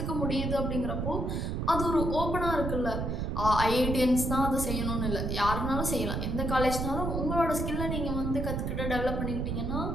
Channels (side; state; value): right; noise; rumble, 1 dB below the sound